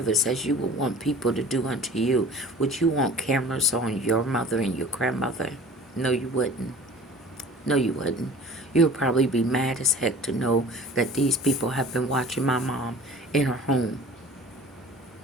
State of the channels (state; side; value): normal; both; correlation 0.43